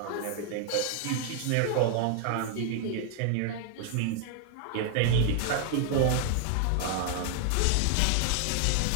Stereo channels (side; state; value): both; different; correlation 0.00